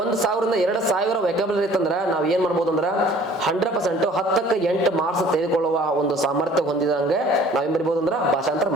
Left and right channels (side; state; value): both; normal; correlation 0.52